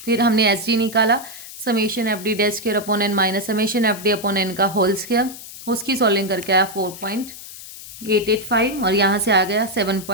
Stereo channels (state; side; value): noise; left; hiss, 14 dB below the sound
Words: फिर हमने एस डी निकाला, summation F D dash square upon N minus summation F D upon N का होल स्क्वायर, उसकी सॉल्विंग करके आया 4.885 और यहाँ से आ गया